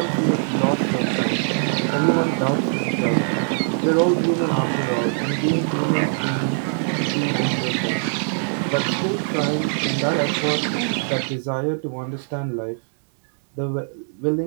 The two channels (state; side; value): silent; left; digital silence